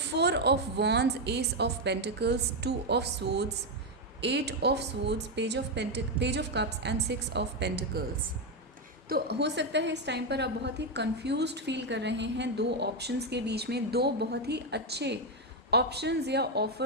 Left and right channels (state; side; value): normal; both; correlation 0.05